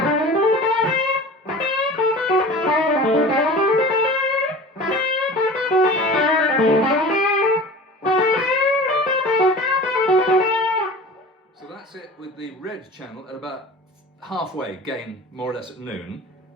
So that's it with the red channel at about halfway gain, more or less at noon.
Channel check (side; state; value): both; normal; correlation 0.38